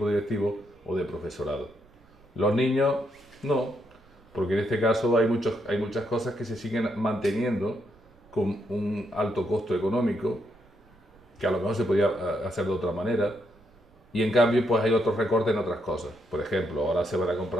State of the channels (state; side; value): noise; right; rumble, 29 dB below the sound